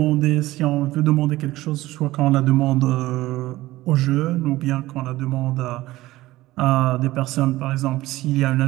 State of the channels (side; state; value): left; quieter; 17.3 dB